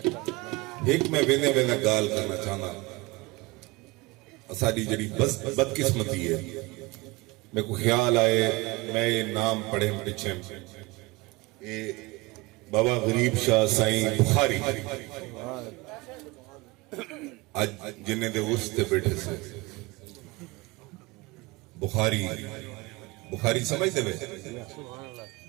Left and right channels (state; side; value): quieter; left; 23.3 dB